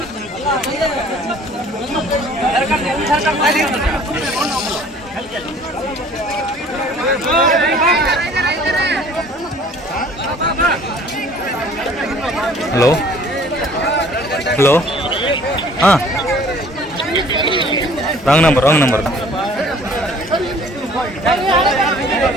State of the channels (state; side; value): normal; both; correlation 0.53